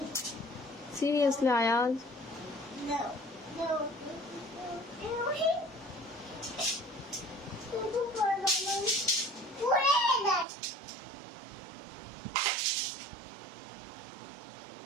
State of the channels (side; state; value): left; drops out; at 10.5 s